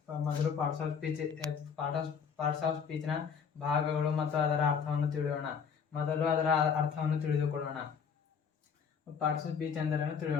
ಮೊದಲು ಪಾರ್ಟ್ಸ್ ಆಫ್ ಸ್ಪೀಚ್ನ ಭಾಗಗಳು ಮತ್ತು ಅದರ ಅರ್ಥವನ್ನು ತಿಳಿಯೋಣ. ಮೊದಲು ಅದರ ಅರ್ಥವನ್ನು ತಿಳಿದುಕೊಳ್ಳೋಣ. ಪಾರ್ಟ್ಸ್ ಆಫ್ ಸ್ಪೀಚ್ ಎಂದರೇನು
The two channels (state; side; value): quieter; right; 6.6 dB